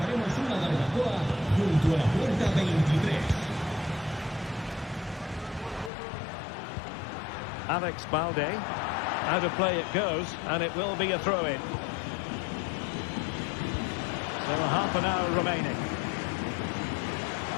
Alex Balde. Out of play it goes, and it will be a throw-in. So half an hour remaining.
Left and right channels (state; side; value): drops out; right; at 5.9 s